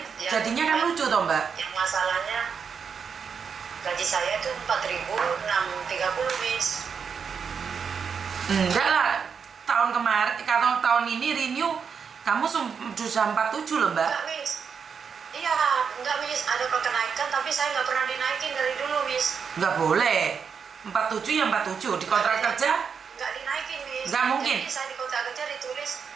jadinya kan lucu toh Mbak. Yang masalahnya gaji saya itu 4.630 Miss. Enggak lah, tahun kemarin, kalau tahun ini renew kamu sudah 47 loh Mbak. Enggak Miss. Iya, enggak Miss, ada kenaikan tapi saya nggak pernah dinaikin dari dulu Miss. Nggak boleh. 47 ya 47 di kontrak kerja. Nggak dinaikin Miss. Nggak mungkin. Jadi saya di kontrak kerja ditulis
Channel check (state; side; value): quieter; left; 6.4 dB